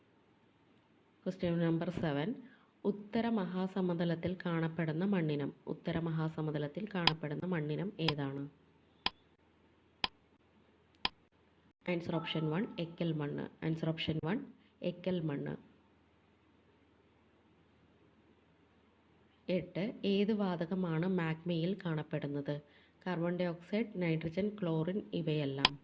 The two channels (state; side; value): identical; both; correlation 1.00